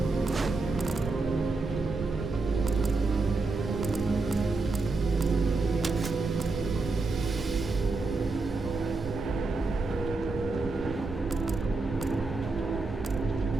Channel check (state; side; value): quieter; left; 3.7 dB